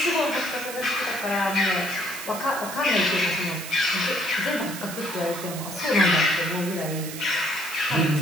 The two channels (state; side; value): noise; right; hiss, 10 dB below the sound